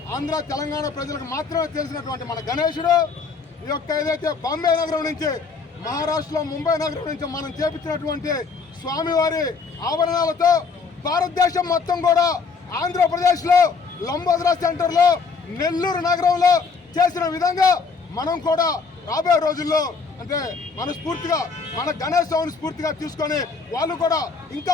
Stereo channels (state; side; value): quieter; right; 5.0 dB